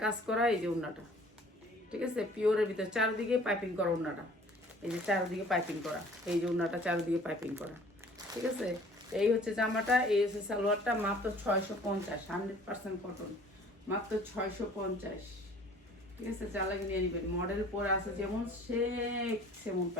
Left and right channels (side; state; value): both; normal; correlation 0.51